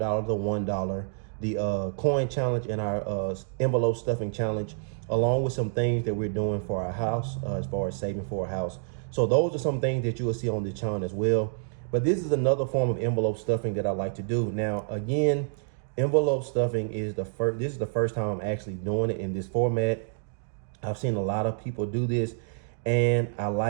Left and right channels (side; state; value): left; silent; digital silence